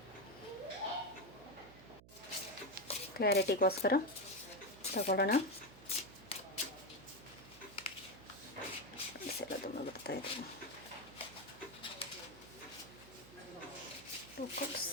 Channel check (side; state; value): right; noise; hum, 20 dB below the sound